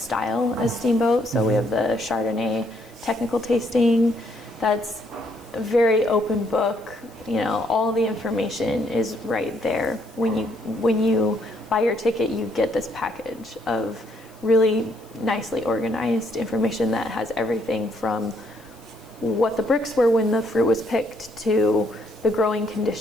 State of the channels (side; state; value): left; noise; hiss, 28 dB below the sound